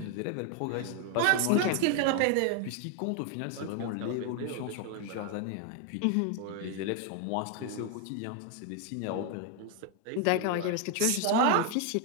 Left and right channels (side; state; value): both; different; correlation 0.01